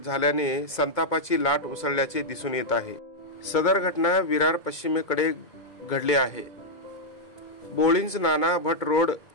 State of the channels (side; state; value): right; late; 2.2 ms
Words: झाल्याने संतापाची लाट उसळल्याचे दिसून येत आहे। सदर घटना विरार पश्चिमेकडे घडली आहे। बोळिंज नाना भट रोड